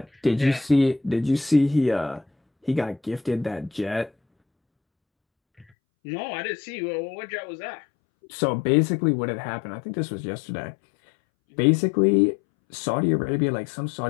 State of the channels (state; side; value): drops out; right; at 5.7 s